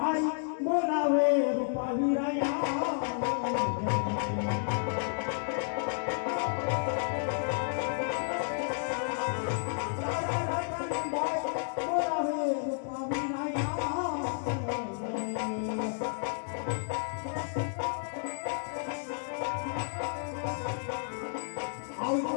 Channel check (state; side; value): silent; right; digital silence